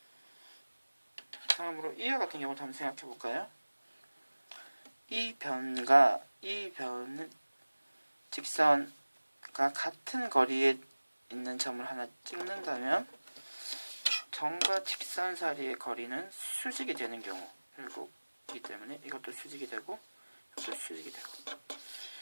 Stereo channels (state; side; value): inverted; both; correlation -1.00